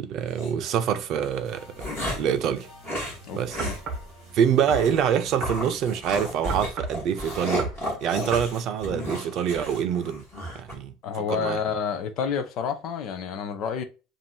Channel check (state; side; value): quieter; left; 4.7 dB